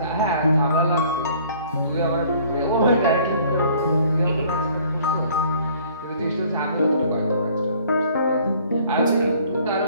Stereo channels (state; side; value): inverted; both; correlation -0.56